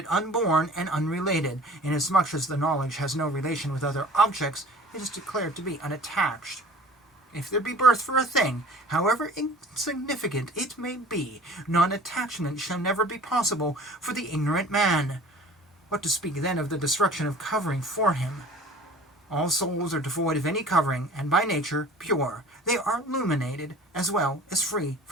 unborn and unrelated. Inasmuch as the knowledge has no relation with other objects, it is declared to be unattached. If there be birth for a thing, however insignificant it may be, non-attachment shall never be possible for the ignorant man. What to speak then of the destruction of covering for him? All souls are devoid of any covering, and by nature pure. They are illuminated, as well as free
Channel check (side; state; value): both; normal; correlation 0.46